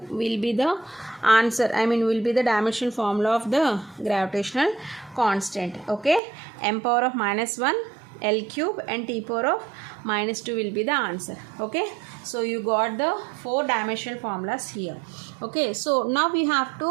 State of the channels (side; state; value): left; drops out; at 6.2 s